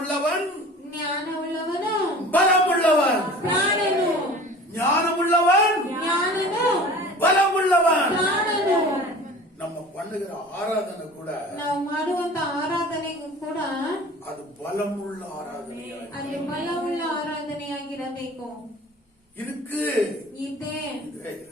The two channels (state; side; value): normal; both; correlation 0.42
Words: ಜ್ಞಾನವುಳ್ಳವನು பலமுள்ளவன். ಪ್ರಾಣನು. ஞானமுள்ளவன் ಜ್ಞಾನನು பலமுள்ளவன். பண்ணுகிற ஆராதனை கூட ನಾವು ಮಾಡುವಂತ ಆರಾಧನೆಗೂ ಕೂಡ அது பலமுள்ள ஆராதனையா ಅದು ಬಲವುಳ್ಳ ಆರಾಧನೆಯಾಗಿರಬೇಕು. இருக்கு. ಇದೆ